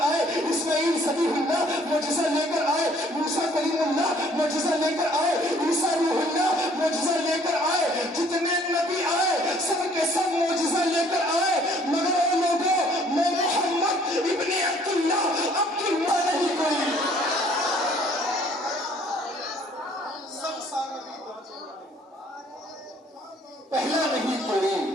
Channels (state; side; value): normal; both; correlation 0.59